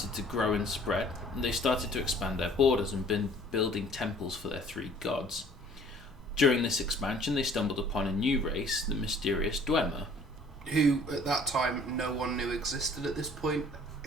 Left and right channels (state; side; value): normal; both; correlation 0.54